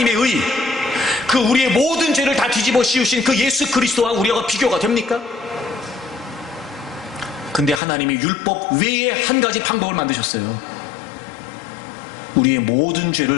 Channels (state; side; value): drops out; right; at 7.8 s